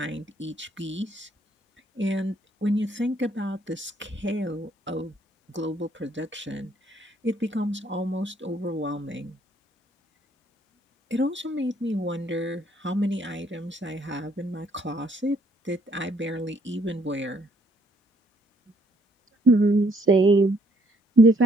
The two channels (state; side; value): normal; both; correlation 0.66